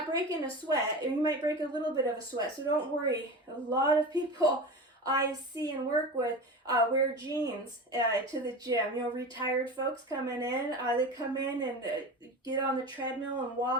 breaking a sweat, and you might break a little bit of a sweat, so don't worry. A lot of people I see and work with wear jeans to the gym. Retired folks coming in, they come in and get on the treadmill and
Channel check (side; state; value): both; normal; correlation 0.29